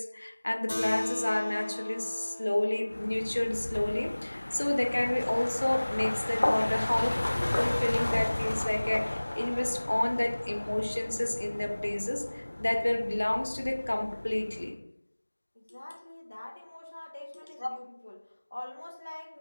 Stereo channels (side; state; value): both; inverted; correlation -1.00